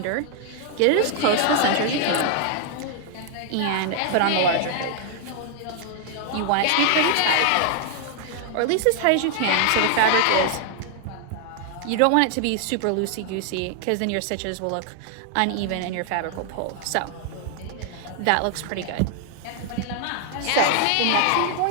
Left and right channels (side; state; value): both; different; correlation 0.00